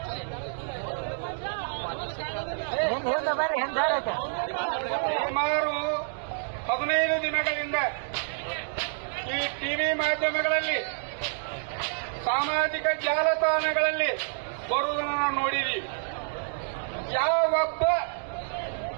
ಸುಮಾರು 15 ದಿನಗಳಿಂದ ಈ ಟಿವಿ ಮಾಧ್ಯಮಗಳಲ್ಲಿ, ಸಾಮಾಜಿಕ ಜಾಲತಾಣಗಳಲ್ಲಿ ಬರುವುದನ್ನು ನಾವು ನೋಡಿದ್ದೀವಿ. ಯಾವೊಬ್ಬ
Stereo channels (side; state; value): left; silent; digital silence